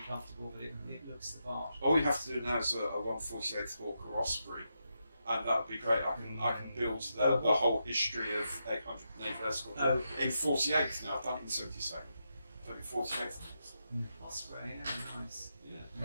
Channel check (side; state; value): both; inverted; correlation -0.85